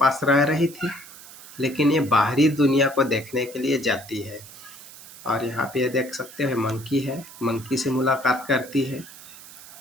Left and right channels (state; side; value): noise; right; hiss, 17 dB below the sound